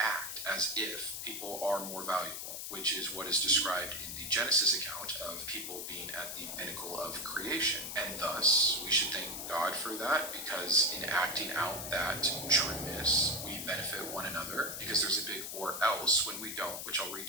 as if people are more valuable, which is what is described in the Genesis account of people being at the pinnacle of creation. And thus, we should thank God for that, because in acting out that trueness, we benefit one another, because there's a big or else when we don't, which I'll read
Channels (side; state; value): left; noise; hiss, 6 dB below the sound